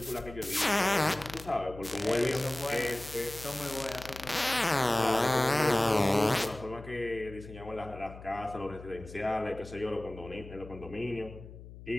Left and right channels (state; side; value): noise; left; hum, 15 dB below the sound